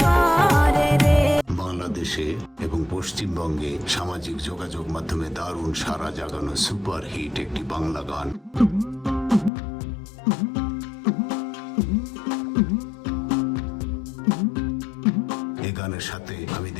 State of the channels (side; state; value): right; drops out; at 9.5 s